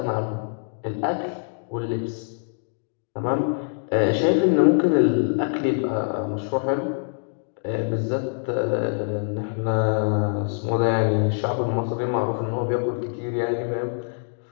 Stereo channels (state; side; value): silent; right; digital silence